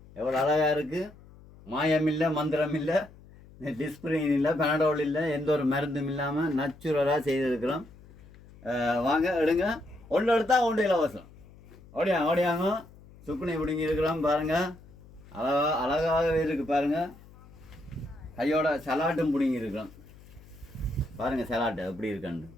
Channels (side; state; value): left; noise; hum, 22 dB below the sound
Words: எவ்வளோ அழகாக இருக்குது. மாயம் இல்லை, மந்திரம் இல்லை, டிஸ்பிரின் இல்லை, பெனடோல் இல்லை, எந்த ஒரு மருந்தும் இல்லாமல் நேச்சுரலாக செய்திருக்கிறோம். வாங்க எடுங்க, ஒன்று எடுத்தால் ஒன்று இலவசம். ஓடியாங்க சுக்குனி பிடிங்கி இருக்கிறோம். பாருங்கள் அழகாகவே இருக்குது. பாருங்கள் கையோட சலாட்டும் பிடிங்கி இருக்கிறோம். பாருங்கள் சலாட்டு எப்படி இருக்கேன்னு,